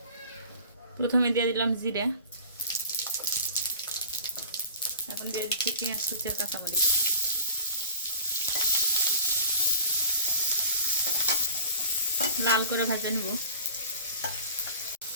প্রথমে দিয়ে দিলাম জিরে, এখন দিয়ে দিচ্ছি পেঁয়াজ কুচি আর কাঁচামরিচ। লাল করে ভাজা নিব।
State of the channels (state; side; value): inverted; both; correlation -0.44